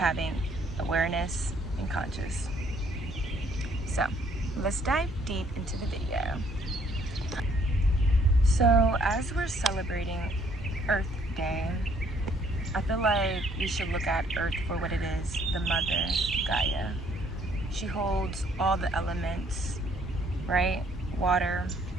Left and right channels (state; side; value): normal; both; correlation 0.64